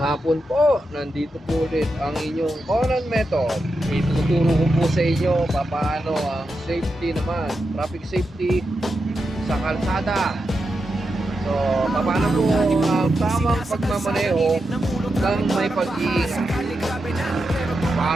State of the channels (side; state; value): both; normal; correlation 0.88